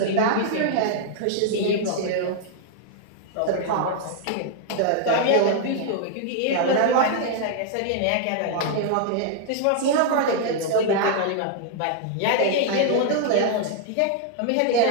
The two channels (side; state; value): both; different; correlation -0.01